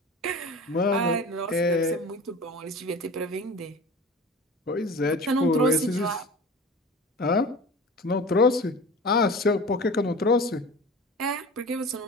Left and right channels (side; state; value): both; normal; correlation 0.36